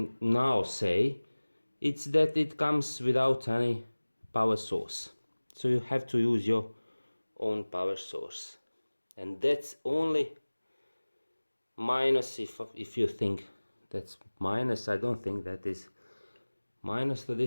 now say, it's that it comes without any power source. So you have to use your own power source. And that's only minus. If you think that's minus, I don't think that is minus to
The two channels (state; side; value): inverted; both; correlation -1.00